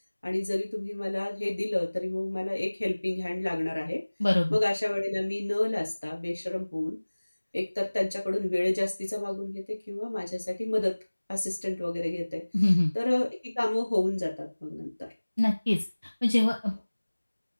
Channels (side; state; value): both; inverted; correlation -1.00